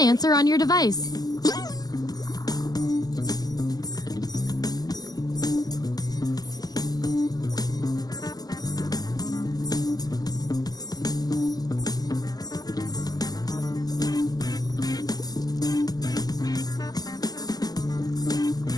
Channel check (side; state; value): right; late; 0.19 ms